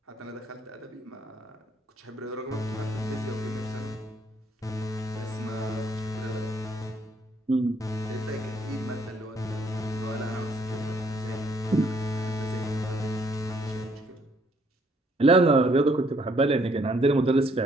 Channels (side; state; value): both; normal; correlation 0.67